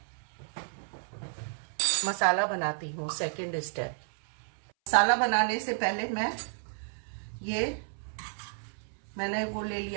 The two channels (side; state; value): left; silent; 57 dB below the other